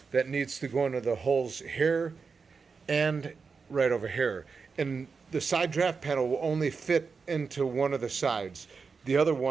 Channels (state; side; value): quieter; left; 5.1 dB